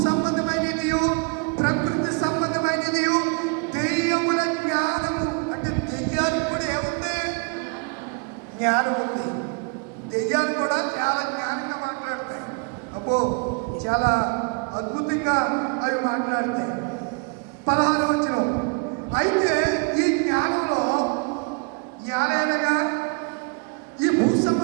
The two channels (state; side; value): quieter; left; 34.7 dB